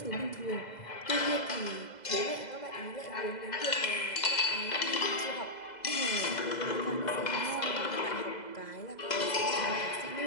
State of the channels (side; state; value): right; late; 2.0 ms